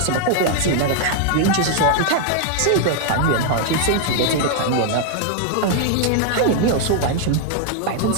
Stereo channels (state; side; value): different; both; correlation 0.00